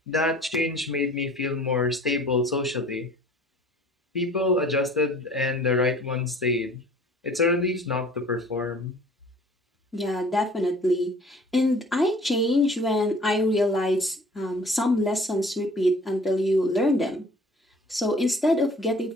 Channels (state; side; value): normal; both; correlation 0.50